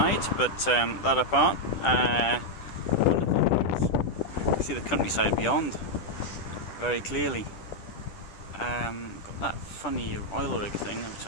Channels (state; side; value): late; right; 10 ms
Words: but that apart, wonderful. You see the countryside beyond very clearly. Got that funny oil rig thing, which